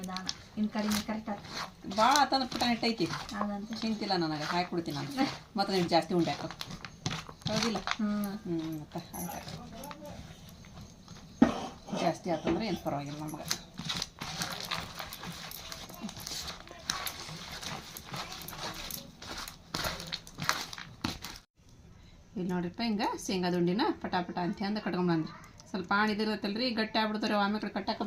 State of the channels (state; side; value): identical; both; correlation 1.00